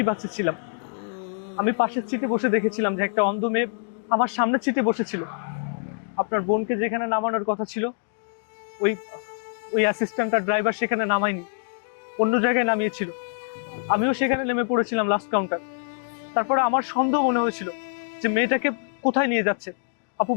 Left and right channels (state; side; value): silent; right; digital silence